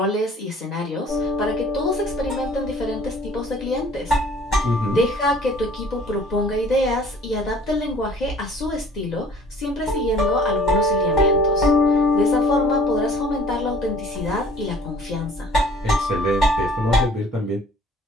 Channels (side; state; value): both; normal; correlation 0.52